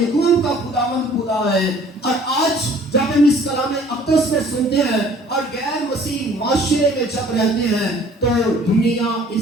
کا خداوند خدا ہے. اور آج جب ہم اس کلام اقدس میں سنتے ہیں اور غیر مسیح معاشرے میں جب رہتے ہیں تو دنیا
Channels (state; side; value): normal; both; correlation 0.53